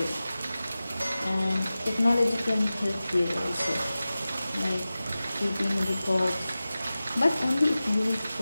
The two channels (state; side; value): inverted; both; correlation -0.96